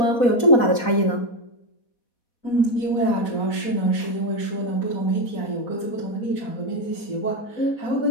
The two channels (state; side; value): late; right; 4.2 ms